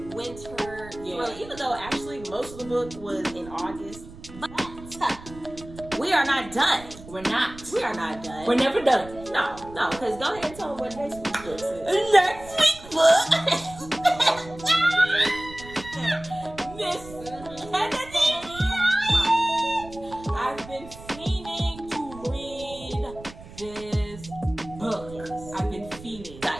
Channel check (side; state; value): right; noise; rumble, 17 dB below the sound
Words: Actually, most of the book was in August. But we are not done. We're not. We are not done. We're never done. No, because go ahead and tell them what next week's book is. Next week's book. Miss Kennedy. I've been fiending to read this book. I've been fiending.